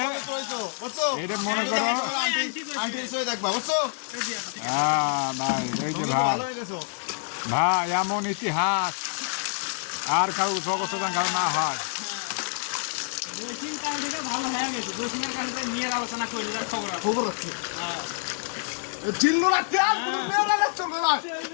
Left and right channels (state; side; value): silent; right; digital silence